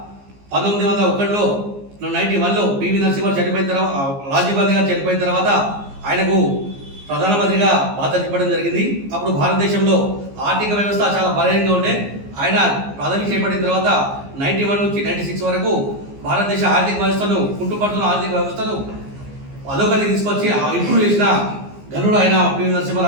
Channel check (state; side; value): late; left; 15 ms